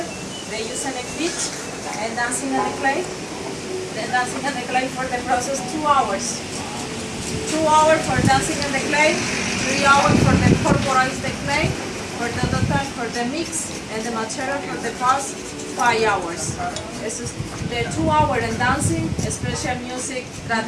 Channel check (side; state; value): both; identical; correlation 1.00